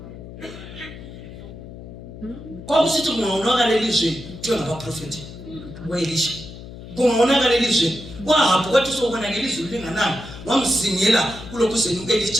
Kwakusithi kungaonakala elizweni kuthiwa ngabaprofeti weElisha. Kungaonakala elizweni kwahabhu kwathi sokubona ngelizwi lingananga wamsingela kulokhuzeni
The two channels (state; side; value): noise; left; hum, 14 dB below the sound